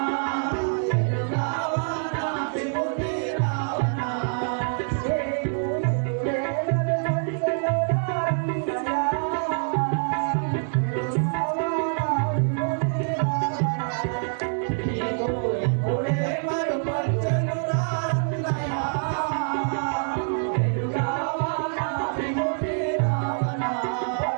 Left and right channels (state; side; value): silent; left; 61 dB below the other